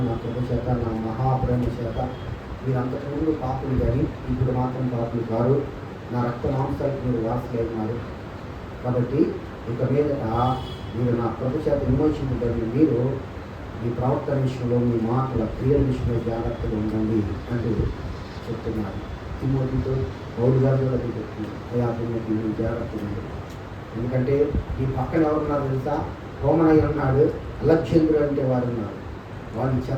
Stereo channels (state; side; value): identical; both; correlation 1.00